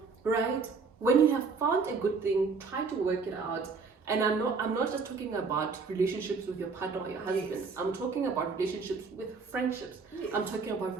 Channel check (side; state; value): left; quieter; 4.8 dB